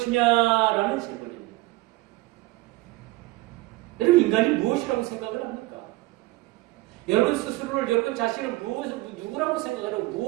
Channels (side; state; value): left; quieter; 20.1 dB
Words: 질문입니다. 여러분, 인간이 무엇이라고 생각을 합니까? 여러분 스스로를, 여러분 자신을 누구라고 생각하고